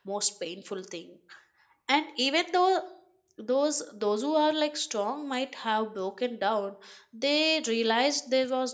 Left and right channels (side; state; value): both; identical; correlation 1.00